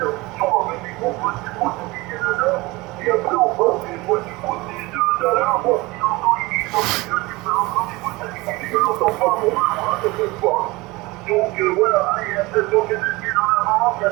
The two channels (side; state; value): left; quieter; 22.3 dB